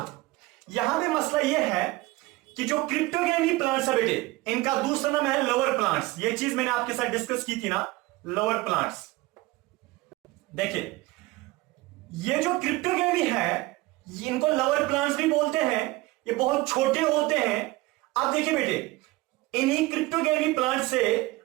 यहां पे मसला यह है कि जो क्रिप्टोगैमी प्लांट्स है बेटे, इनका दूसरा नाम है लोअर प्लांट्स। ये चीज मैंने आपके साथ डिस्कस की थी ना, लोअर प्लांट्स। देखिए ये जो क्रिप्टोगैमी है इनको लोअर प्लांट्स भी बोलते हैं, ये बहुत छोटे होते हैं। अब देखिए बेटे, इन्हीं क्रिप्टोगैमी प्लांट से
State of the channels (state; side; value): quieter; left; 20.1 dB